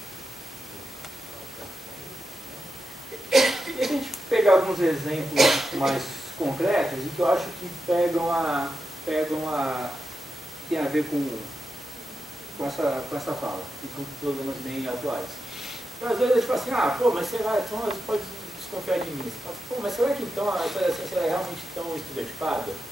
E se a gente pegar alguns exemplos mais concretos, e que eu acho que tem a ver com essa fala, e com problemas bem atuais. Então, às vezes a gente fala assim, mas será, então você pode desconfiar de mim. Você fala, mas será que então a ciência é realmente tão estereotipada?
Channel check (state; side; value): normal; both; correlation 0.88